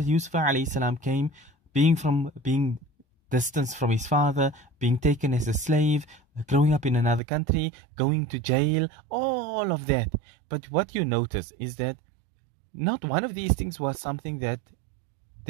Yusuf alayhi salam came, being distanced from his father, being taken as a slave, growing up in another country, going to jail, all of that. But what you notice is that not one of these things was something that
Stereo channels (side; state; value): left; drops out; at 7.2 s